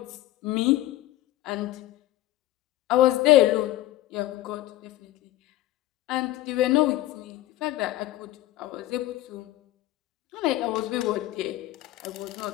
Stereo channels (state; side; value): quieter; right; 15.3 dB